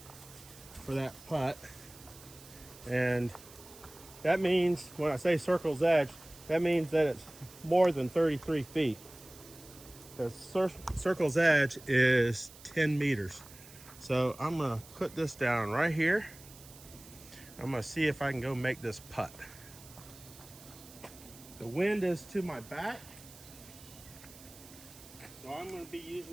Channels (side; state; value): right; noise; hiss, 19 dB below the sound